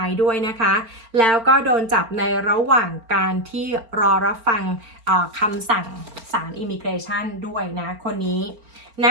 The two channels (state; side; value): late; left; 4.4 ms